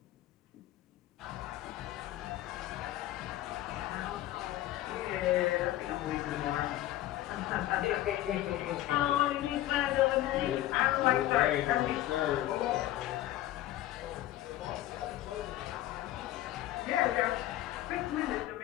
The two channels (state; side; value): quieter; right; 14.4 dB